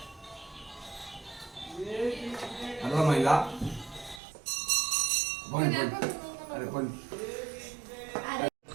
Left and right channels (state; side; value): drops out; left; at 4.2 s